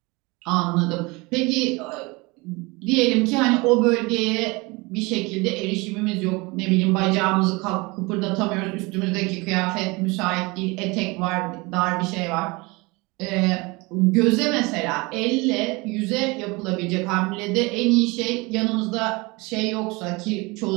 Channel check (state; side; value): quieter; left; 25.2 dB